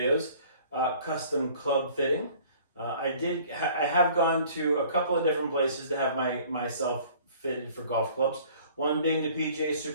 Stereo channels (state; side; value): inverted; both; correlation -0.52